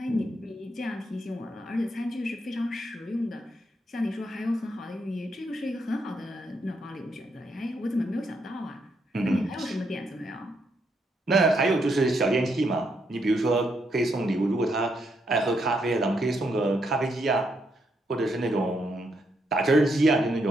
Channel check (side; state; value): both; normal; correlation 0.77